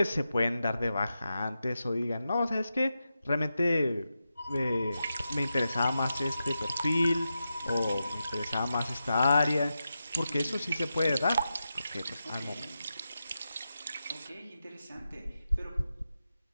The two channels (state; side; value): inverted; both; correlation -0.90